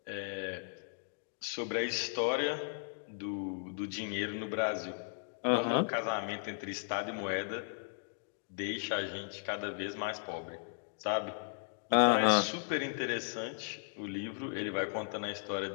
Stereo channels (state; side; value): silent; right; digital silence